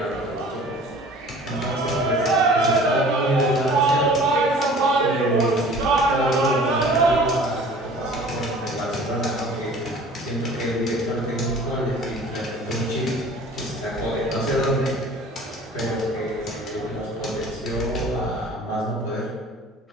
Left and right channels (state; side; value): normal; both; correlation 0.46